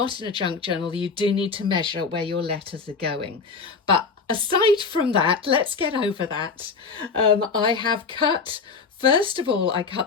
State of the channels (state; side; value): quieter; right; 4.9 dB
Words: in a junk journal. You do need to measure where your letters are going. But aside from that, let's get over that. I have cut, first of all, I